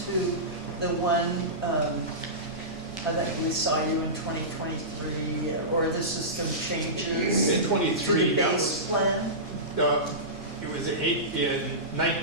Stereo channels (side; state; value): both; normal; correlation -0.19